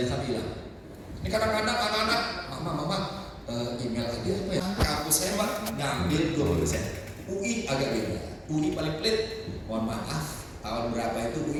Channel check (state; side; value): identical; both; correlation 1.00